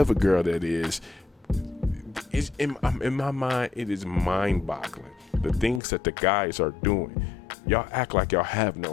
girl that is. In my mind, it is mind-boggling. The things that the guys are doing. Y'all act like y'all have no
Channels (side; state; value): right; drops out; at 5.8 s